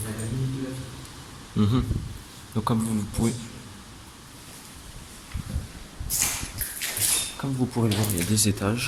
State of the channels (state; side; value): identical; both; correlation 1.00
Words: a la limite de la ville. Mhm. Donc, comme vous pourrez le voir, il y a des